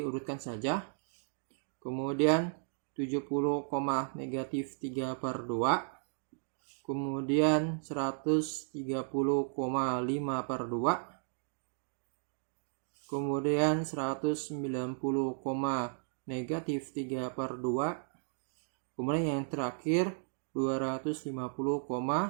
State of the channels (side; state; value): left; silent; digital silence